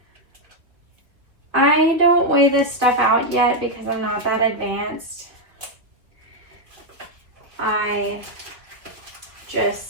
I don't weigh this stuff out yet because I'm not that advanced. I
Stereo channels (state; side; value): late; left; 2.3 ms